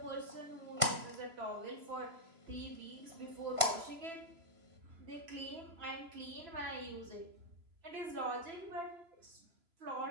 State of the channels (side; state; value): left; late; 3.0 ms